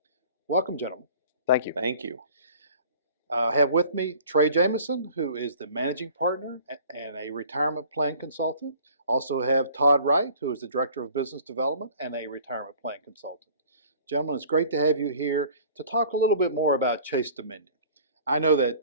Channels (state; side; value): inverted; both; correlation -0.48